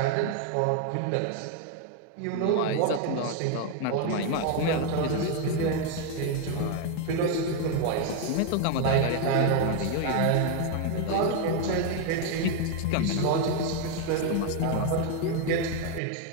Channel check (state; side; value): different; both; correlation 0.01